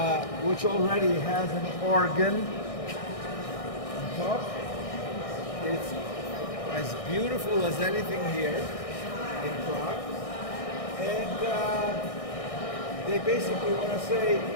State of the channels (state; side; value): late; right; 1.6 ms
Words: which already has an organ on top. It's as beautiful as anything here in Prague. And they basically want to say,